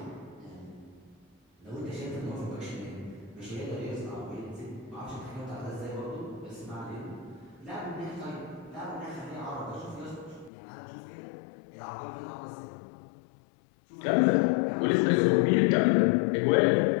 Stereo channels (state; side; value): drops out; right; at 10.5 s